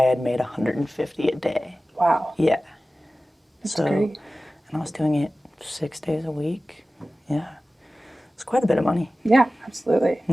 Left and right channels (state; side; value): normal; both; correlation 0.96